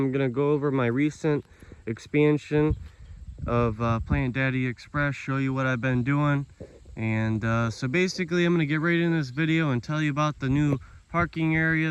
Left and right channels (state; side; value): identical; both; correlation 1.00